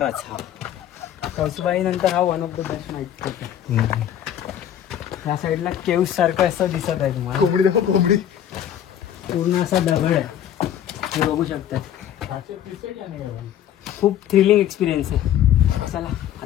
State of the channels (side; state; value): right; quieter; 10.4 dB